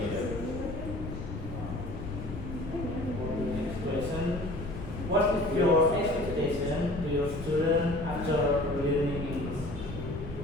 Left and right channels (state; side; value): noise; left; rumble, 8 dB below the sound